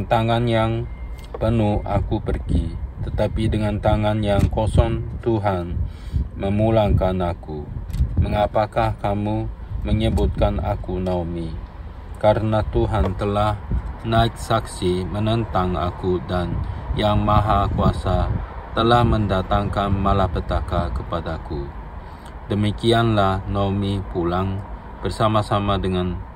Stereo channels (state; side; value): identical; both; correlation 1.00